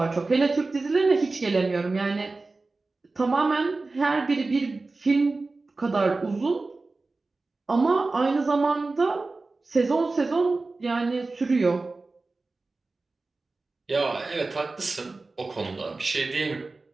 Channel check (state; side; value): quieter; left; 3.5 dB